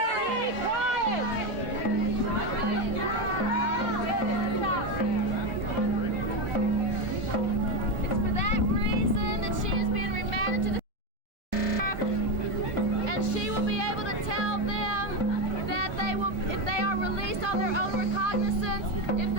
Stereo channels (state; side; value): late; left; 1.4 ms